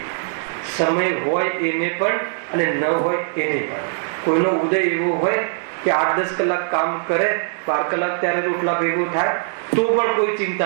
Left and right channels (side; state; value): left; silent; 65 dB below the other